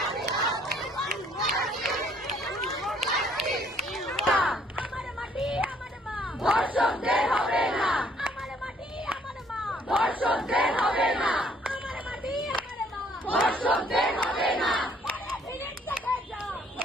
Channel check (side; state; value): both; normal; correlation 0.64